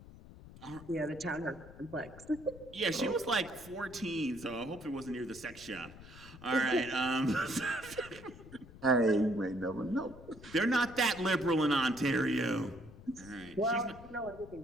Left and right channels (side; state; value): left; noise; rumble, 18 dB below the sound